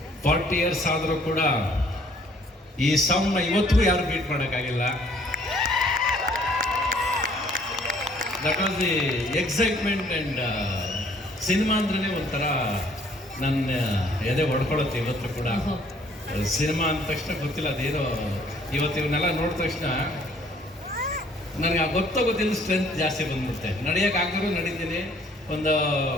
40 years ಆದರೂ ಕೂಡ ಈ ಸೌಂಡ್ನ ಇವತ್ತಿಗೂ ಯಾರು ಬೀಟ್ ಮಾಡೋಕ್ಕಾಗಿಲ್ಲ. That was the excitement. And cinema ಅಂದ್ರೆ ಒಂಥರ ನನ್ನ ಎದೆ ಹೊಡ್ಕೊಳುತ್ತೆ ಇವತ್ತು ಕೂಡ. ಸಿನಿಮಾ ಅಂದ ತಕ್ಷಣ ಗೊತ್ತಿಲ್ಲ ಅದೇನೋ, ಇವತ್ತು ಇವನ್ನೆಲ್ಲ ನೋಡಿದ ತಕ್ಷಣ ನನಗೆ ಗೊತ್ತಿಲ್ಲ ಸ್ಟ್ರೆಂತ್ ಜಾಸ್ತಿ ಬಂದ್ಬಿಡುತ್ತೆ. ನಡೆಯೋಕ್ಕಾಗಿರೋ ನಡೀತೀನಿ. ಒಂದು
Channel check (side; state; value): both; normal; correlation 0.59